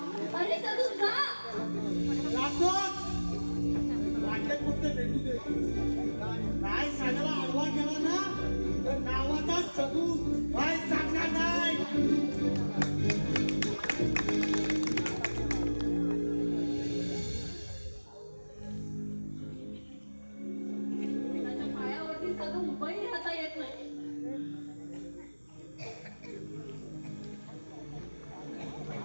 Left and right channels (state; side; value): inverted; both; correlation -1.00